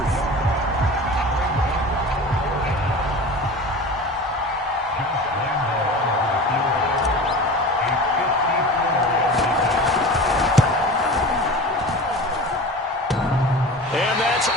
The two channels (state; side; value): normal; both; correlation 0.35